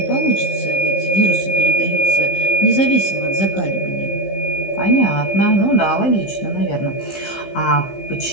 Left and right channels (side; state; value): right; late; 15 ms